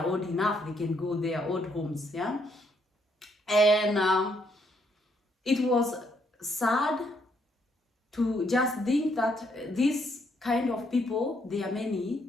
old enough, they can go their old homes, yeah. And it was sad to just think that these kind of people, they are many,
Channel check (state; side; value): normal; both; correlation 0.72